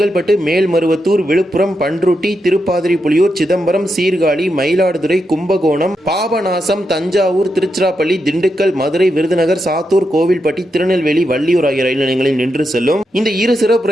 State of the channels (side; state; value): both; normal; correlation 0.85